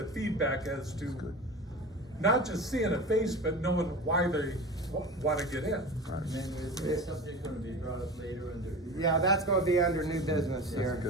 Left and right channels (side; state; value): both; normal; correlation 0.32